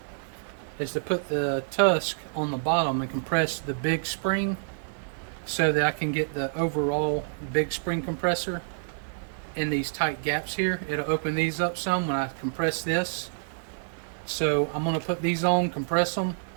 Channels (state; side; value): silent; left; digital silence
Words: is to put the Tusk on the bottom and compress the big spring so that I can get the overall big spring compressor in these tight gaps here. It'll open these up some when I compress this. So I'm going to put these on, compress them.